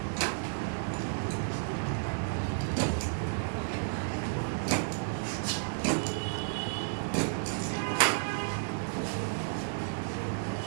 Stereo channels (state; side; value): silent; left; digital silence